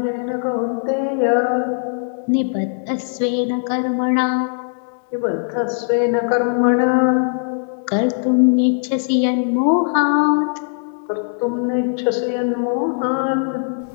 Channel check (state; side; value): silent; right; 63 dB below the other